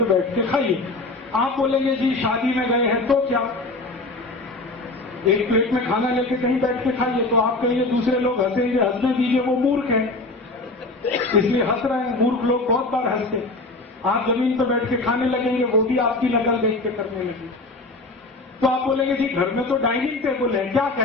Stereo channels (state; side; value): quieter; right; 3.1 dB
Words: बैठ के खाइए। आप बोलेंगे जी शादी में गए हैं तो क्या, एक प्लेट में खाना लेके कहीं बैठ के खाइए, तो आप कहेंगे दूसरे लोग हंसेंगे, हंसने दीजिए, वो मूर्ख है इसलिए हंस रहे हैं। मूर्ख लोग बहुत बार हंसते। आप जमीन पर बैठ के खाने लगेंगे, वो भी आपकी नकल देख के करने लगे। तो आप बोलेंगे जी घर में तो डाइनिंग टेबल है, क्या